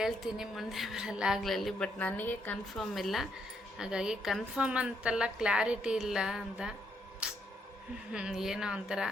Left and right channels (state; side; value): normal; both; correlation 0.75